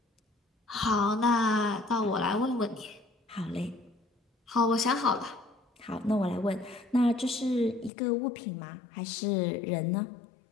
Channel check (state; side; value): drops out; right; at 7.9 s